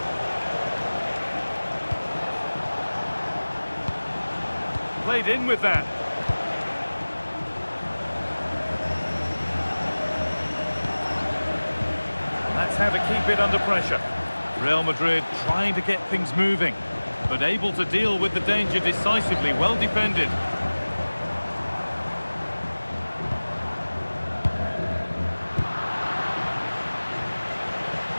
Played in with that. That's how to keep it under pressure. Real Madrid trying to get things moving, but able to deal with the danger decisively. Well defended.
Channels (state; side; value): inverted; both; correlation -1.00